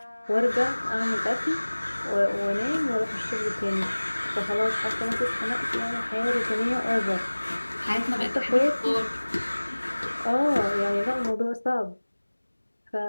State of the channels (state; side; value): inverted; both; correlation -1.00